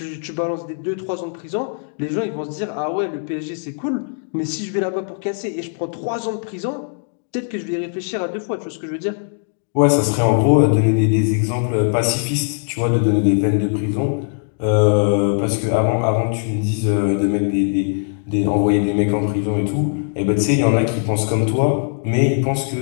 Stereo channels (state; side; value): silent; right; digital silence